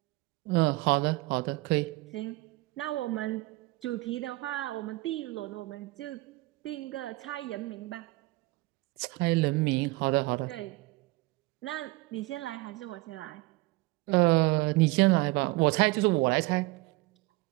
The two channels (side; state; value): left; quieter; 22.0 dB